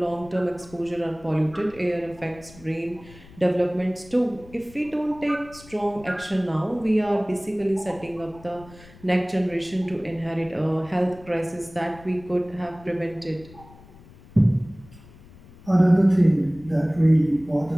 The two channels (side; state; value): left; noise; rumble, 22 dB below the sound